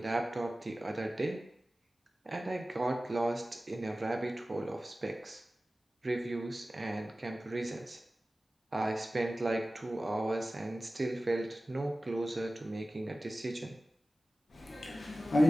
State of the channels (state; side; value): normal; both; correlation 0.96